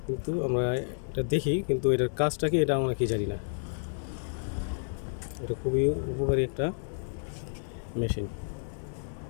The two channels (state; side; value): silent; right; digital silence